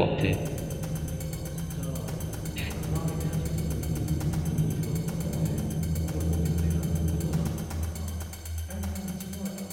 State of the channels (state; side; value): identical; both; correlation 1.00